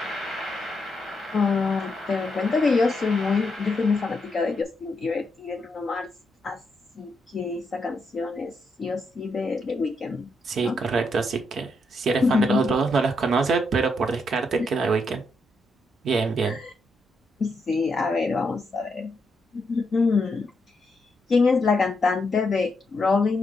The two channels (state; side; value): normal; both; correlation 0.80